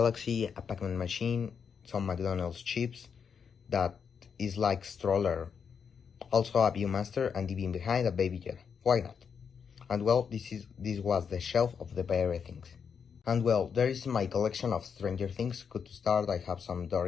a Pac-Man machine, some McDonald's chips, that is like stroller. Also a Viewmaster, and even behind a Baby Yoda. Why not? And well, this was the shelf of the very things. And well, there is my collection of Stranger Things. Good to start, I have some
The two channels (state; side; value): quieter; right; 6.7 dB